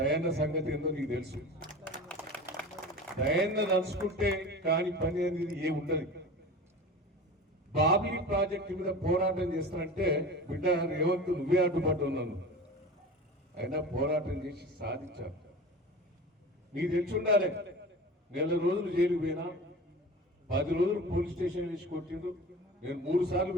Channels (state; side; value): normal; both; correlation 0.35